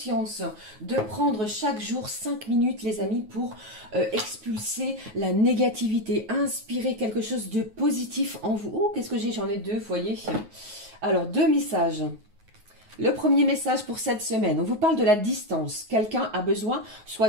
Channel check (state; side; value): late; left; 9.4 ms